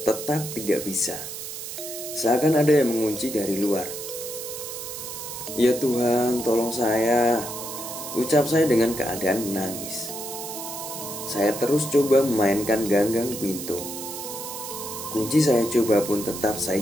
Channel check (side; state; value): right; noise; hiss, 8 dB below the sound